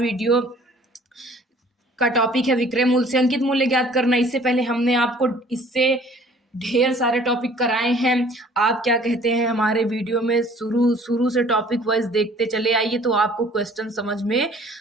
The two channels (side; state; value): both; normal; correlation 0.54